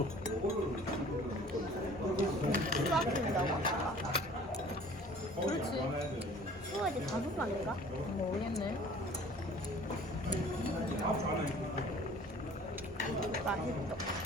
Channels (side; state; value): both; normal; correlation 0.49